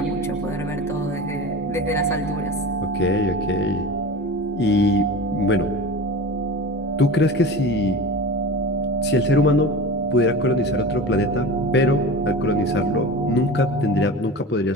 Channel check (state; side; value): normal; both; correlation 0.32